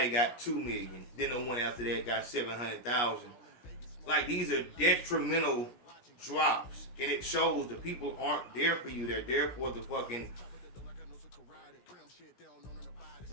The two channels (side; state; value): right; late; 17 ms